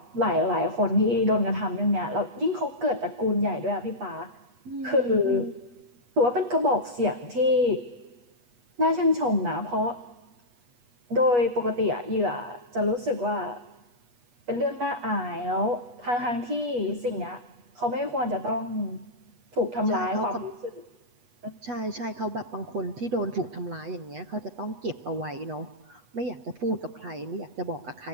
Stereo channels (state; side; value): late; left; 8.3 ms